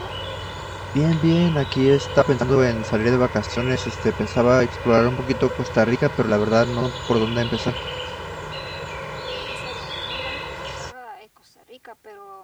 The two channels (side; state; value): both; identical; correlation 1.00